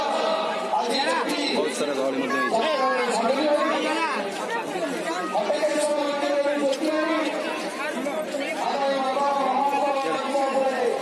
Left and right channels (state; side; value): identical; both; correlation 1.00